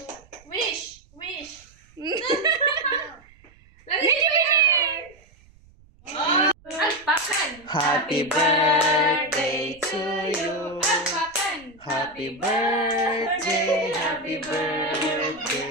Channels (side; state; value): right; noise; rumble, 27 dB below the sound